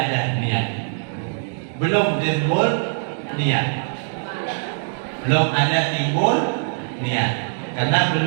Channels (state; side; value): silent; left; digital silence